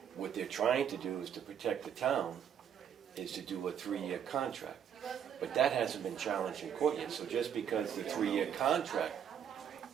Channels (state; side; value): quieter; left; 8.6 dB